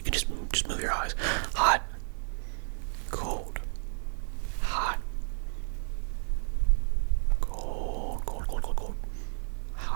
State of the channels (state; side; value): silent; left; 57 dB below the other